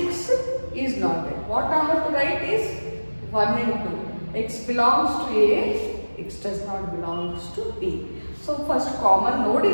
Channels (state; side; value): inverted; both; correlation -1.00